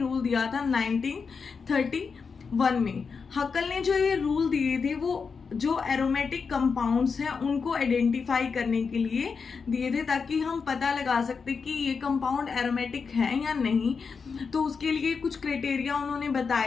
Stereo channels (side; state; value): right; quieter; 5.4 dB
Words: दिया था 1931 में। हक्कल ने जो ये रूल दिए थे वो जो एरोमेटिक कंपाउंड्स हैं उनको आइडेंटिफाई करने के लिए दिए थे, ताकि हम पता लगा सकते कि ये कंपाउंड एरोमेटिक है या नहीं। तो उसके लिए कुछ क्राइटेरिया उन्होंने